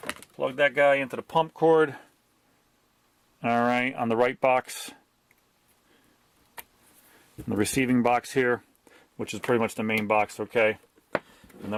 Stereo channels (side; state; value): both; identical; correlation 1.00